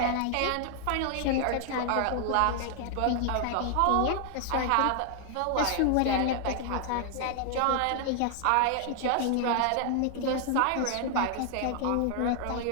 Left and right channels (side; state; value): both; different; correlation 0.00